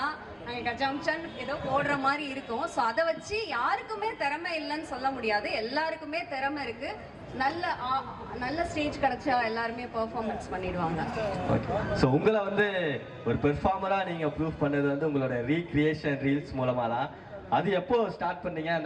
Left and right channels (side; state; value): both; identical; correlation 1.00